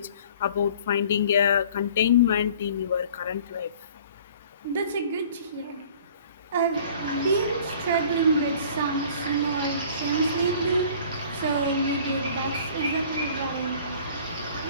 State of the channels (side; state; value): both; inverted; correlation -0.50